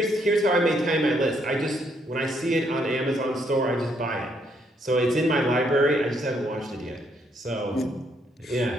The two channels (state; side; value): normal; both; correlation 0.72